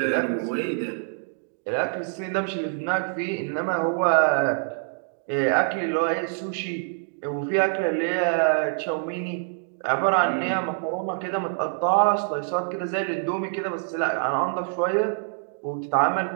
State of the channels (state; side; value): silent; left; digital silence